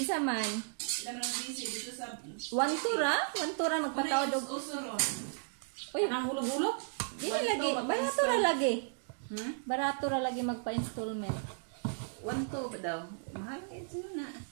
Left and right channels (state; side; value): silent; left; digital silence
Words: man Sila man ang busy dito sa... one tura magpataod og Uso ron. uy nang hulog-hulog. dili lagi barato ra lagi Hmm? barato ra lagi magpa-installment 1 to ba daw? Mahal nga ito na.